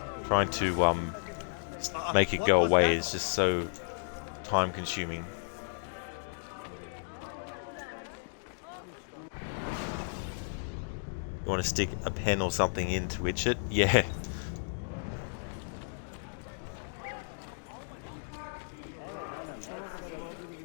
Trying to make it go away is just so time consuming. You want to stick a pen or something in to itch it? Yeah.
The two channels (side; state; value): right; silent; digital silence